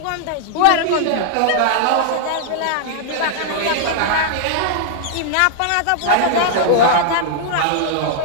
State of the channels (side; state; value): both; different; correlation -0.01